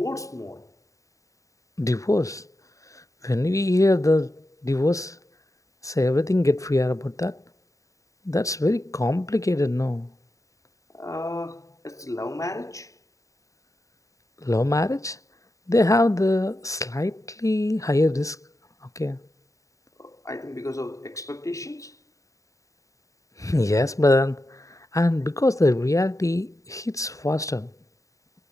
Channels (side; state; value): right; late; 0.16 ms